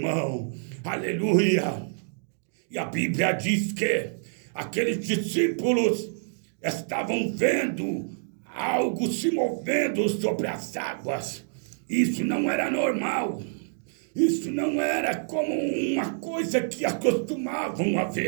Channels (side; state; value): left; silent; digital silence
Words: Aleluia! E a Bíblia diz que aqueles discípulos estavam vendo algo se movendo sobre as águas. Isso não era normal. Isso não era como uma coisa que acostumavam a